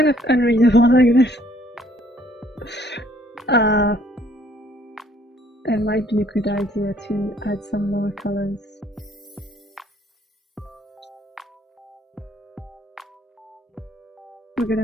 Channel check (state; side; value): normal; both; correlation 0.62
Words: of unreadable like this. It might be a good idea to add some more colors. We're